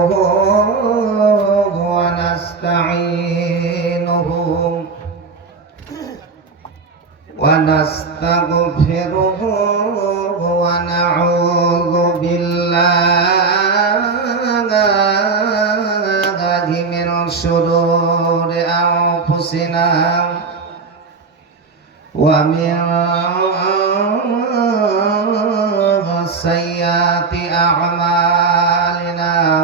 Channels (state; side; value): quieter; left; 4.6 dB